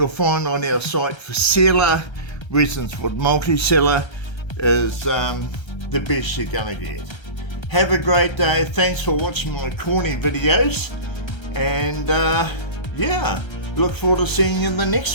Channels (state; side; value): late; right; 1.3 ms